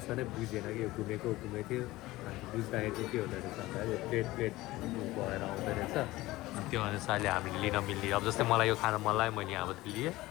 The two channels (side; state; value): right; quieter; 18.3 dB